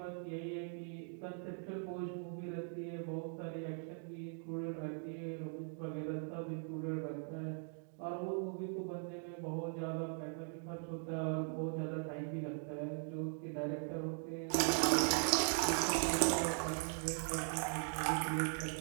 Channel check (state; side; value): silent; left; 51 dB below the other